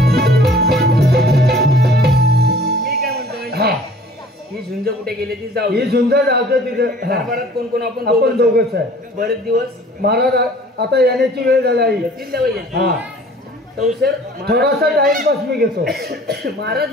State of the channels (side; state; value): both; normal; correlation 0.50